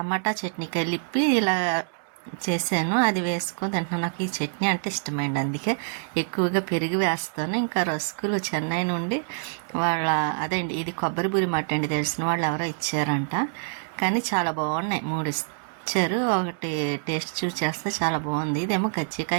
చట్నీ కలిపి ఇలా చేశాను. అది వేసుకొని తింటున్నాను. నాకు ఈ చట్నీ అంటే ఇష్టమైంది, అందుకే ఎక్కువగా పెరుగు వేస్తాను. ఇంకా రస్కులు చెన్నై నుండి అదేండి ఇది కొబ్బరి బూరి మాట అండి, తెలిసిన వాళ్ళు ఎవరో ఇచ్చారంట. కానీ చాలా బాగున్నాయి, 3 ఇచ్చారు. ఒకటి టేస్ట్ చూసి చేస్తే చాలా బాగుంది. ఇదేమో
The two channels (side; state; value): left; silent; digital silence